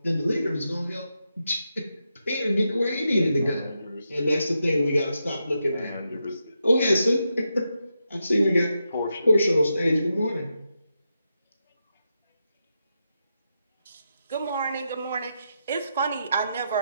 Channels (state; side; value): inverted; both; correlation -0.86